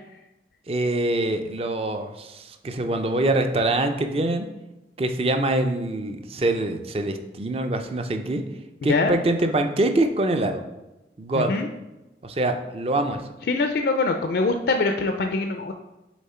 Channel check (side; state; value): both; normal; correlation 0.43